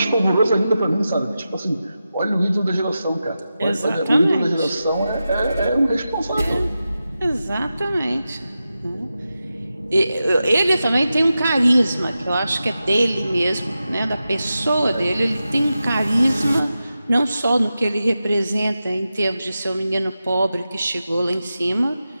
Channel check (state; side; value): inverted; both; correlation -0.92